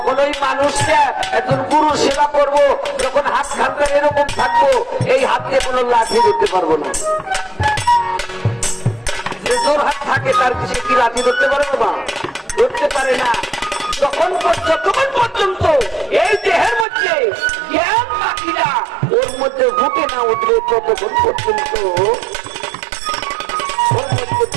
ওই মানুষটা একজন গুরুর সেবা করব, যখন হাত খানটা এরকম থাকবো, এই হাত দিয়ে কোনো লাঠি ধরতে পারবো না। যে জোর হাত থাকে তার কিছু কি লাঠি ধরতে পারে বাবা? ধরতে পারে না। যতক্ষণ পর্যন্ত এই দেহের মধ্যে জ্ঞান পাখিরা ওর মধ্যে ফুটে না উঠবে, ততক্ষণ পর্যন্ত ওর মধ্যে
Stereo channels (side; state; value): left; drops out; at 16.9 s